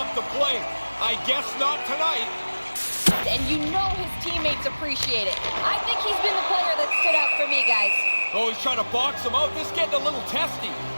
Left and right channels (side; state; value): both; inverted; correlation -1.00